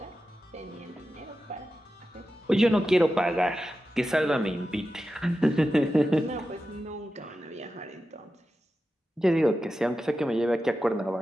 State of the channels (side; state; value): both; normal; correlation 0.92